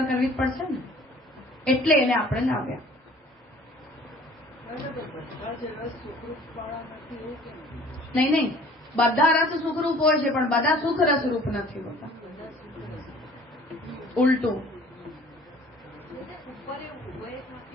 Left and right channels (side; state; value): both; normal; correlation 0.51